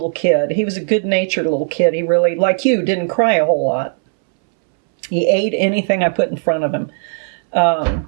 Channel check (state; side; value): silent; left; 66 dB below the other